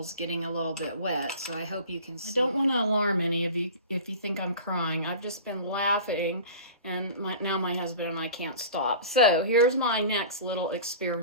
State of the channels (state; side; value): inverted; both; correlation -0.37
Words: getting a little bit wet, so I hope you can see. I don't want to alarm any of you if you think I'm crying. I've just been laughing, and now my husband and I can't stop. So here's my next little